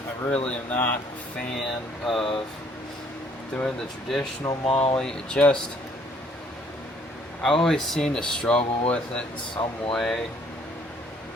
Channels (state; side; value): normal; both; correlation 0.62